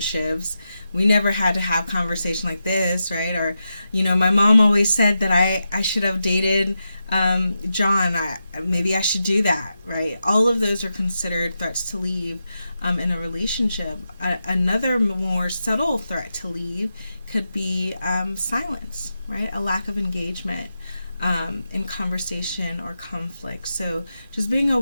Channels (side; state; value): both; inverted; correlation -0.88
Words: we never had to have conversation like this, right? Or, my mom always said that I should have dated John. Maybe I should do that, right? All of those are considered threats to leave in a relationship. Another more subtle threat to leave could be silence, right? A lack of engagement in conversation or conflict. So just being